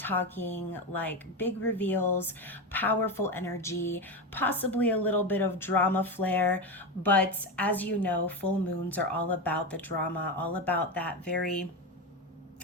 like big reveals, powerful energy, possibly a little bit of drama flair. But as you know, full moons are all about the drama, all about that very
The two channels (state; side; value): normal; both; correlation 0.16